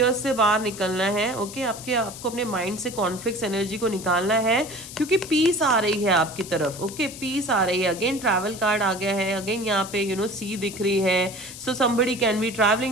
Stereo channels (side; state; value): left; noise; hiss, 13 dB below the sound